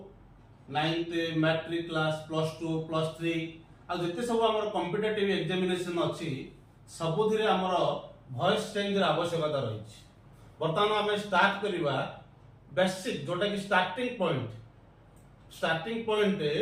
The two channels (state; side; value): identical; both; correlation 1.00